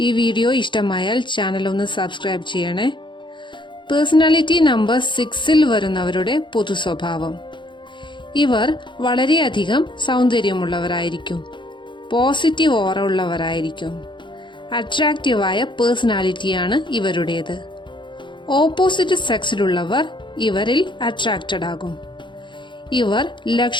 വീഡിയോ ഇഷ്ടമായാൽ ചാനൽ ഒന്ന് സബ്സ്ക്രൈബ് ചെയ്യണേ. പേഴ്സണാലിറ്റി നമ്പർ 6ൽ വരുന്നവരുടെ പൊതു സ്വഭാവം: ഇവർ വളരെയധികം സൗന്ദര്യമുള്ളവരായിരിക്കും, പോസിറ്റീവ് ഓറ ഉള്ളവരായിരിക്കും, അട്രാക്റ്റീവായ പേഴ്സണാലിറ്റിയാണ് ഇവരുടേത്. ഓപ്പോസിറ്റ് സെക്സിലുള്ളവർ ഇവരിൽ അട്രാക്റ്റഡ് ആകും. ഇവർ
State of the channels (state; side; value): late; right; 0.23 ms